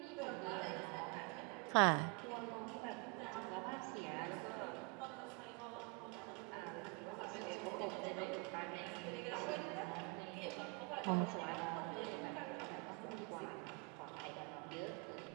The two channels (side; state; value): left; quieter; 30.9 dB